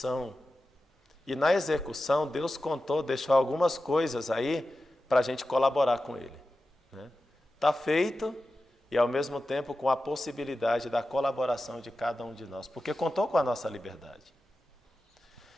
E na execução, Deus deixou algumas coisas aí para a gente colaborar com Ele. Está feito e, ao mesmo tempo, com a possibilidade da colaboração de cada um de nós, porque contou com a nossa liberdade.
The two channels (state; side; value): normal; both; correlation 0.93